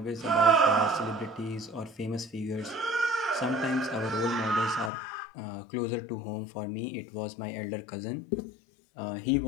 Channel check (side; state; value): right; drops out; at 4.9 s